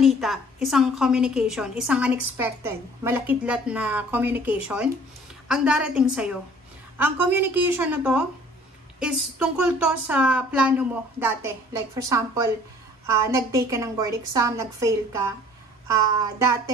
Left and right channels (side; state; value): both; normal; correlation 0.52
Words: isang communication, isang unexpected, malakidlat na communication ang darating sa'yo. Ang communication na to is tungkol to sa plano mo dati. Like for example, nag-take ka ng board exam, nag-fail ka.